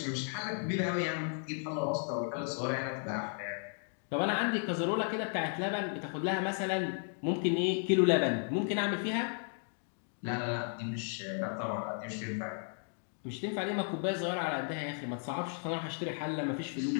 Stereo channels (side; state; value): right; silent; 55 dB below the other